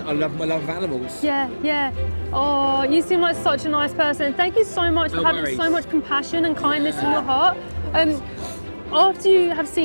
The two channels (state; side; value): inverted; both; correlation -1.00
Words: love my love of animals. Yeah. Oh, you seem like such a nice person. Thank you so much for having so much compassion and kindness in your heart. After you have